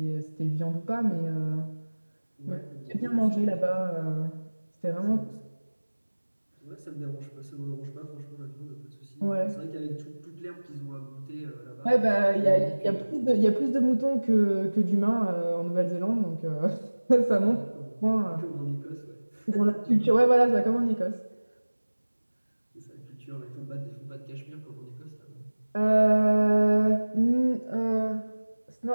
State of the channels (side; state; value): both; inverted; correlation -1.00